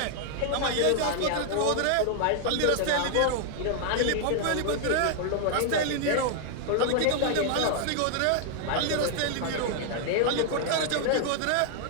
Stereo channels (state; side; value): different; both; correlation 0.00